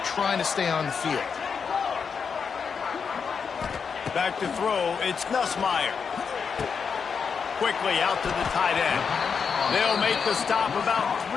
trying to stay on the field. Back to throw, it's Nussmeier. Quickly out to the tight end. They'll make the stop about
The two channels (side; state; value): right; quieter; 6.1 dB